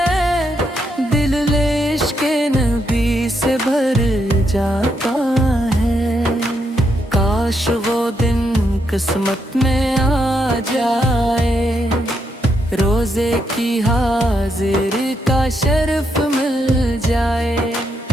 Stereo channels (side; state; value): both; normal; correlation 0.79